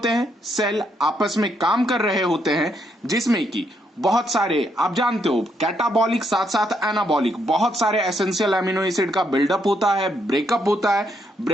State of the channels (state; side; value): normal; both; correlation 0.76